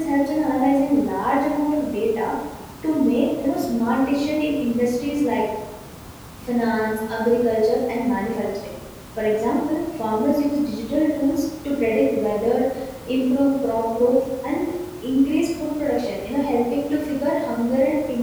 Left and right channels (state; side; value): identical; both; correlation 1.00